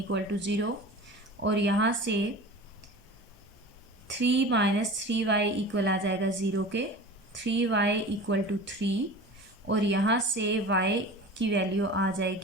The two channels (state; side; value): normal; both; correlation 0.36